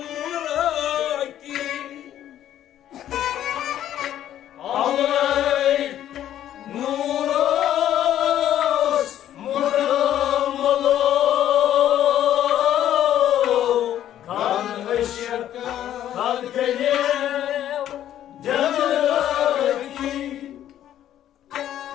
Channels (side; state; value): right; quieter; 11.5 dB